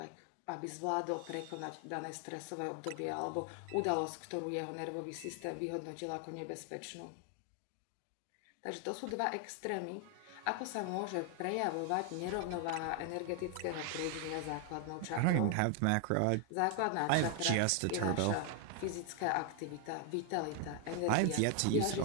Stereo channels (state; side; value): different; both; correlation 0.00